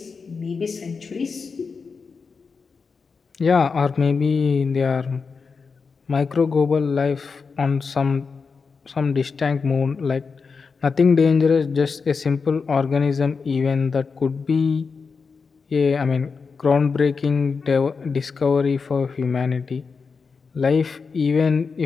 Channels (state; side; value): quieter; right; 5.1 dB